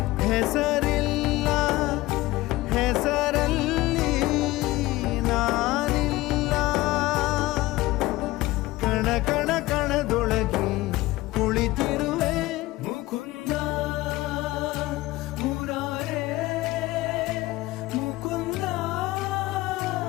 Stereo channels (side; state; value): right; quieter; 18.7 dB